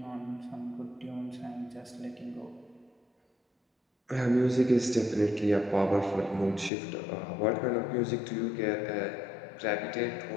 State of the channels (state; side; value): drops out; right; at 6.7 s